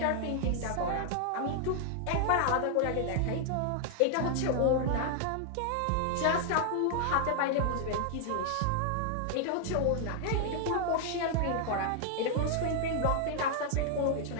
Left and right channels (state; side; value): different; both; correlation 0.00